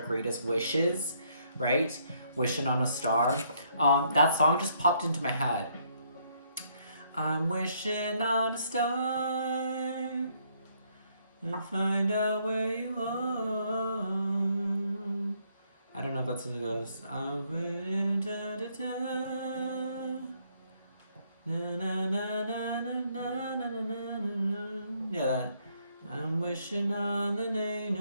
wishes, right? Wishing on a star. That song just popped into my head. I'm wishing on a star and find out where you are. I don't know if that's what it goes. Yeah, that. I'm wishing on the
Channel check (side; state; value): both; inverted; correlation -0.70